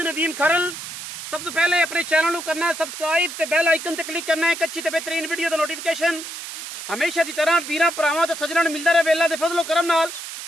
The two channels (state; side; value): noise; right; hiss, 9 dB below the sound